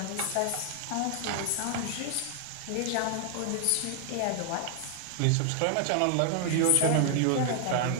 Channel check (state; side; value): different; both; correlation 0.00